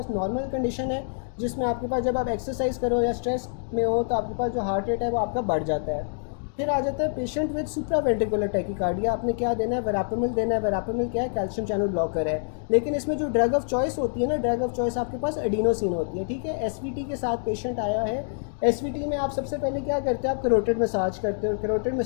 नॉर्मल कंडीशन है, जिसमें आपके पास जब आप एक्सरसाइज करो या स्ट्रेस में हो तो आपके पास जो हार्ट रेट है वो आपका बढ़ जाता है। फिर आ जाता है पेशेंट विद सुप्रावेंट्रिकुलर टैकीकार्डिया। आपने क्या देना है, वेरापेमिल देना है। वेरापेमिल क्या है, कैल्शियम चैनल ब्लॉकर है। लेकिन इसमें जो ड्रग ऑफ चॉइस होती है ना, ड्रग ऑफ चॉइस आपके पास एडिनोसिन होती है। ठीक है, एसवीटी के साथ पेशेंट आया है। एसवीटी में आप सबसे पहले क्या करते हो, आप कैरोटिड मसाज करते हो। कैरोटिड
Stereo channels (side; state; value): right; silent; digital silence